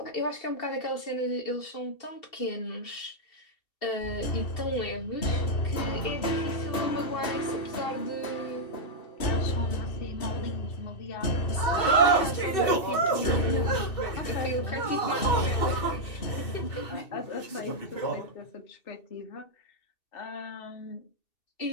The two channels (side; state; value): right; late; 2.7 ms